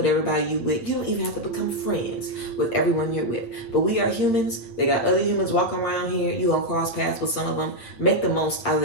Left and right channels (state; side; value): late; right; 8.7 ms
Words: everybody you with. You don't even have to become friends with everyone you're with. But we are humans. They got other humans walking around here. You gonna cross paths with some of them. Make the most out of